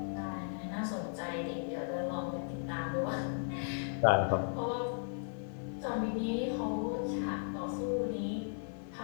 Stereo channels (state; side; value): silent; right; digital silence